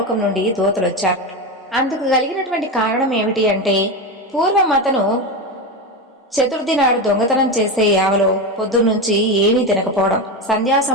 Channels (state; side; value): normal; both; correlation 0.17